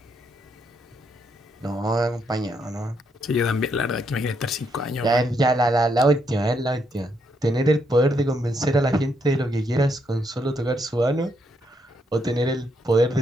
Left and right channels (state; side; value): normal; both; correlation 0.76